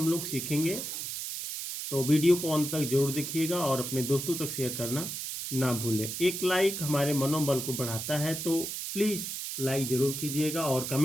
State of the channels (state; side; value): noise; right; hiss, 5 dB below the sound